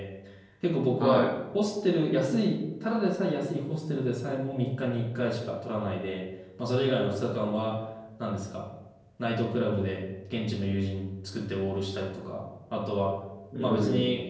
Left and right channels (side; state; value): both; identical; correlation 1.00